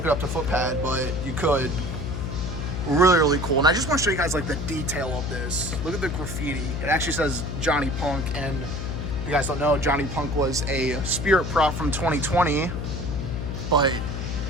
it up to footpad, but you could. Really, really cool. And I just want to show you guys like the detail of this. Look at the graffiti. It actually says Johnny Punk, and if you guys don't know, Johnny Punk was a spirit prop from 2020, but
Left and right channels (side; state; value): left; noise; hum, 4 dB below the sound